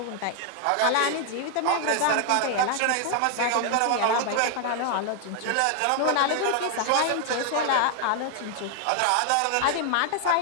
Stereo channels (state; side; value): different; both; correlation 0.00